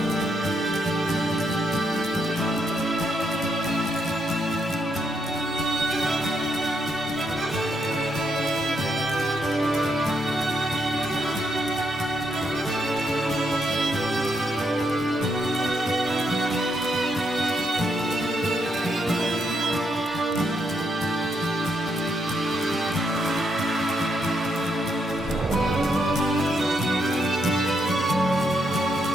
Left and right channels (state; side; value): normal; both; correlation 0.77